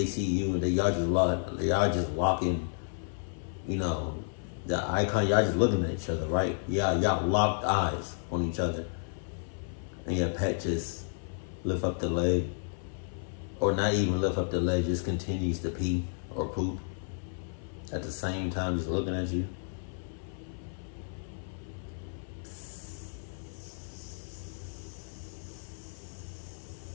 see you, and y'all just walking, you know, the icon, y'all just looking at each other, right? Yeah, y'all locked eyes on each other, and your pet just lift up the leg, or not even lift up the leg, just continues to pee or poop at the same time, just looking at you.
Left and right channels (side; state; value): right; silent; 57 dB below the other